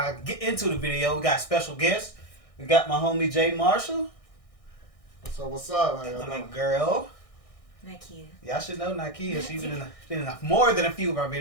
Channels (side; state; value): right; late; 1.6 ms